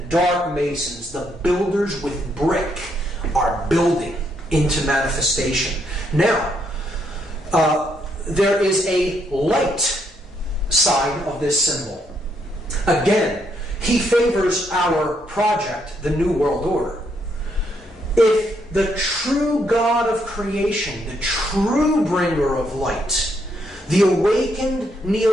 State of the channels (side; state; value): both; normal; correlation 0.74